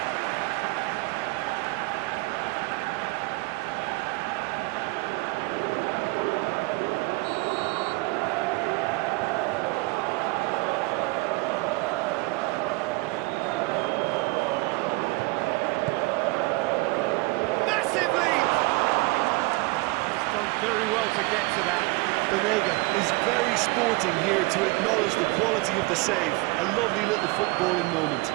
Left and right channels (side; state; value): left; quieter; 23.7 dB